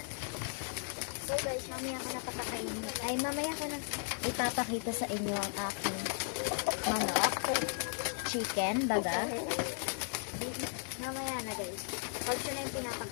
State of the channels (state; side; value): silent; right; 54 dB below the other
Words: So guys, mamaya ko na papakainin. Ay, mamaya ko na ipapakita sa inyo ang aking chicken, baga. Mamaya na guys. Pag siya na yung